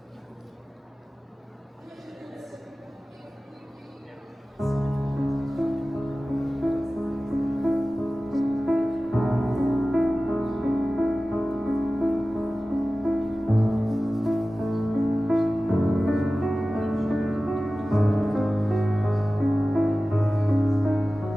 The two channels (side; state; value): both; normal; correlation 0.96